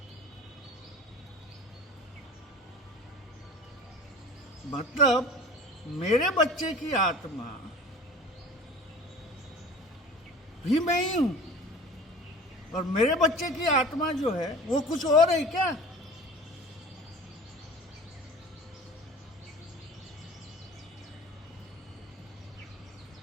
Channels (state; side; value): normal; both; correlation 0.40